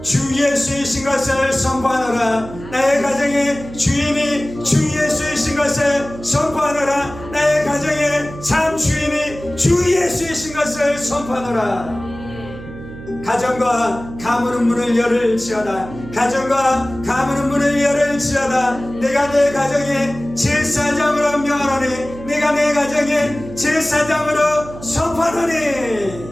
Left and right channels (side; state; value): right; noise; hum, 14 dB below the sound